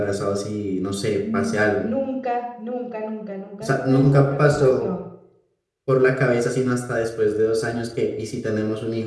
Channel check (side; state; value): both; identical; correlation 1.00